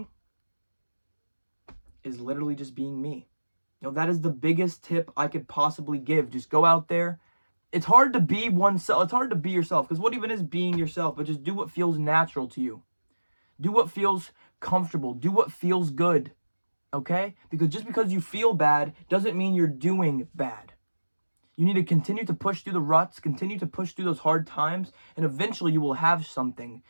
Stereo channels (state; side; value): inverted; both; correlation -1.00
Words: is literally just being me. That is the biggest tip I could possibly give. Just go out there It's hard to be oneself. It's hard to be yourself, because what even is being yourself? But just do what feels natural to you. Do what feels comfortable. Do what feels good. Okay? Because just because you feel bad doesn't mean you're doing bad. You need to continue to push through the ruts, continue to push through those hard times, and eventually you will have something